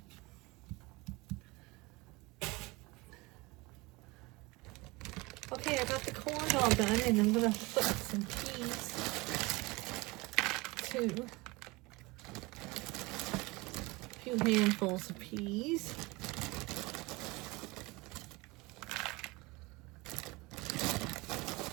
Okay, I got the corn all done, and I'm gonna put some peas too. A few handfuls of peas.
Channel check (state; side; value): quieter; left; 23.7 dB